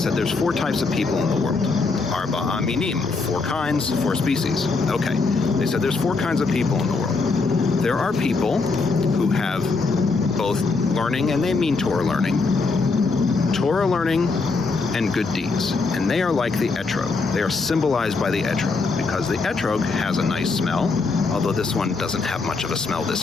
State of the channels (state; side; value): quieter; right; 4.1 dB